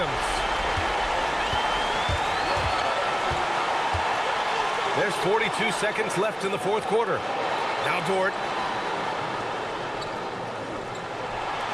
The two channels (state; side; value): identical; both; correlation 1.00